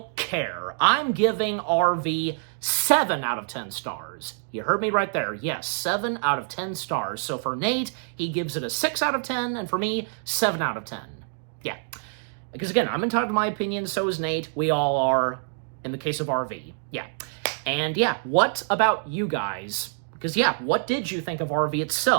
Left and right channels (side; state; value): left; silent; digital silence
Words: care. I'm giving RV 7 out of 10 stars. You heard me right there. Yes, 7 out of 10 stars. So for Nate, he gives it a 6 out of 10, and for me, 7 out of 10. Yeah. Because again, I'm entitled to my opinion, so is Nate. We all are, in the case of RV. Yeah. And yeah, what about you guys? Because yeah, what did you think of RV